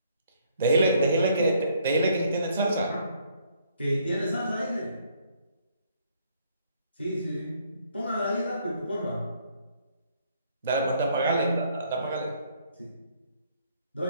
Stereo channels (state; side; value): inverted; both; correlation -0.66